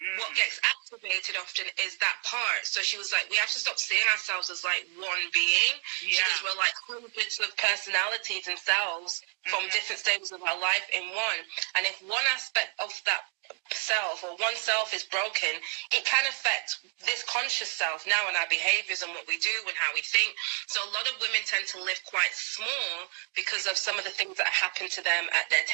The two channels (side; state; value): left; quieter; 37.5 dB